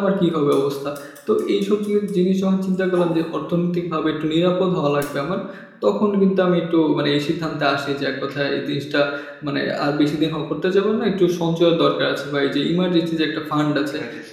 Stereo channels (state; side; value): identical; both; correlation 1.00